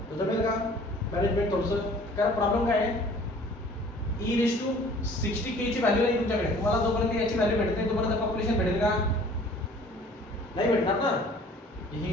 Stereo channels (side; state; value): both; normal; correlation 0.51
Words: तर जमेल का? मॅनेजमेंट थोडंसं. कारण प्रॉब्लेम काय आहे, e⁻60k ची व्हॅल्यू नाही तुमच्याकडे. तुम्हाला जोपर्यंत याची व्हॅल्यू भेटत नाही तोपर्यंत पॉप्युलेशन भेटेल का? नाही भेटणार ना.